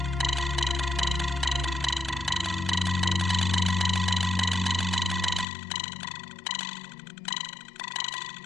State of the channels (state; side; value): drops out; right; at 5.5 s